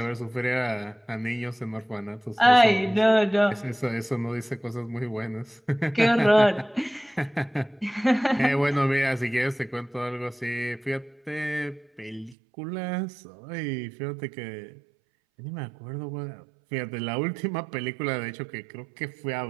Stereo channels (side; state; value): left; drops out; at 12.4 s